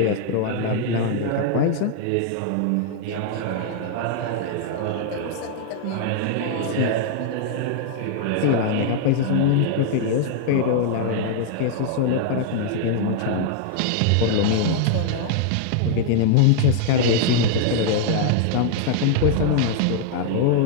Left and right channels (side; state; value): both; different; correlation 0.00